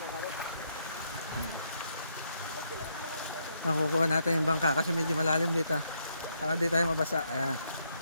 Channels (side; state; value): both; inverted; correlation -0.76